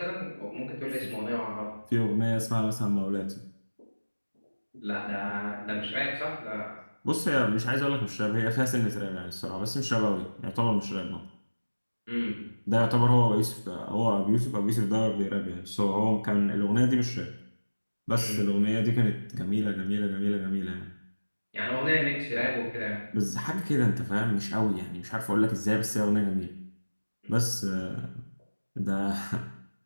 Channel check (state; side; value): inverted; both; correlation -1.00